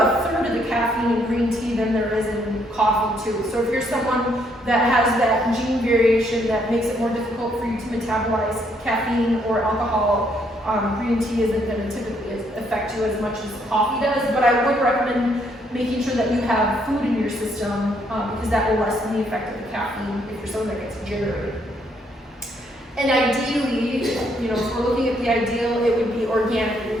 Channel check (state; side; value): normal; both; correlation 0.71